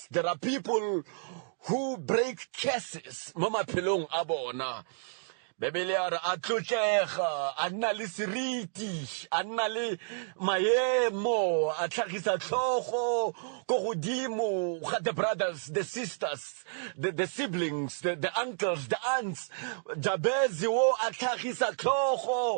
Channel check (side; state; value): left; silent; digital silence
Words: There are people who break curses mo maphelong a bona. Bebele a re a tlotlega a nna le seriti a nna le maemo a tlhagisa tlhogo go godimo ga the brothers, the sisters, the siblings, the uncles, the aunts. Jabezi wo a tlhagisa